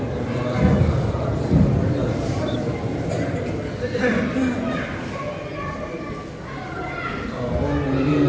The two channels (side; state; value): both; identical; correlation 1.00